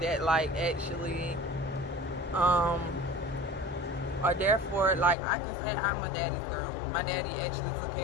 that like actually are there for, like, I can say I'm a daddy's girl. My daddy actually took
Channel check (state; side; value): drops out; right; at 5.2 s